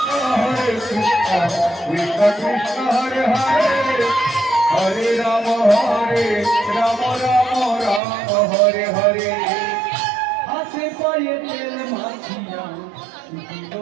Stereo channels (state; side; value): drops out; left; at 8.0 s